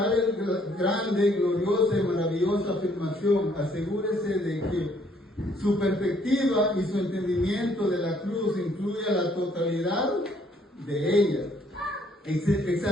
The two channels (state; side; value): normal; both; correlation 0.65